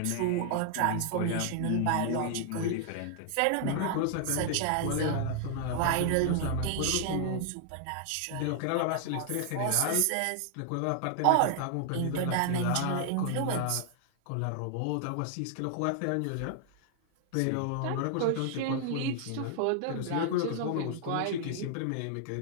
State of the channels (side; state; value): both; different; correlation 0.00